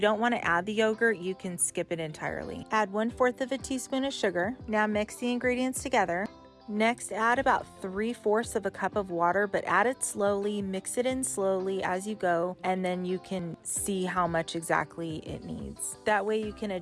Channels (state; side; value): identical; both; correlation 1.00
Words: don't want to add the yogurt, you can skip it entirely. Add 1/4 of a teaspoon of sugar. Now mix the ingredients together. Next, add about 3/4 of a cup of water, but add it slowly, mix it in slowly as you go, and then you can see how much exactly it needs. That way you can